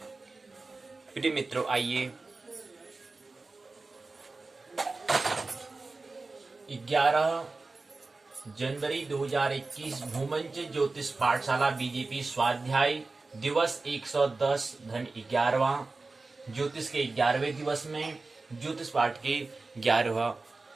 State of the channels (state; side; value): quieter; left; 3.6 dB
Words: प्रिय मित्रों, आइए 11 जनवरी 2021 भूमंच ज्योतिष पाठशाला बीजेपी स्वाध्याय दिवस 110 धन 11वां ज्योतिष के 11वें दिवस में ज्योतिष पाठ के 11वां